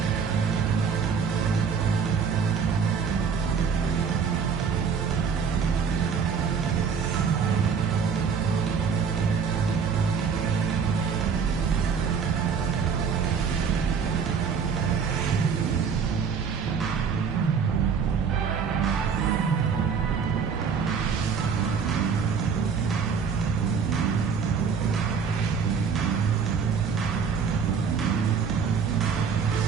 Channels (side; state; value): left; quieter; 6.2 dB